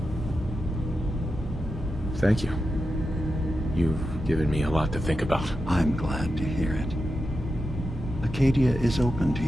Thank you. You've given me a lot to think about. I'm glad to hear it. Acadia is open to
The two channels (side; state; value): both; normal; correlation 0.89